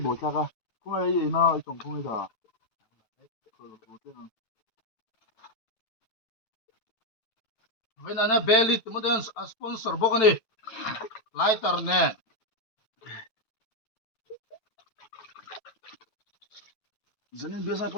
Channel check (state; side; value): late; right; 9.1 ms